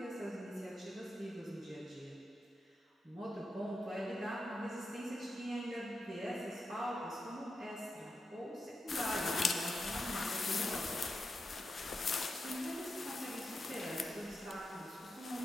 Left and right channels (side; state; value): both; normal; correlation 0.88